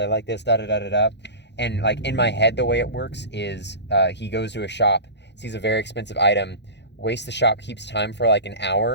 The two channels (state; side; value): late; right; 0.50 ms